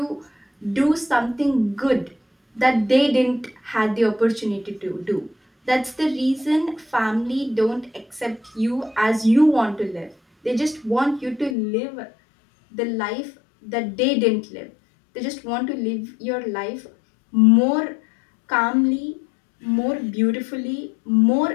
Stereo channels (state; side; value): drops out; right; at 11.6 s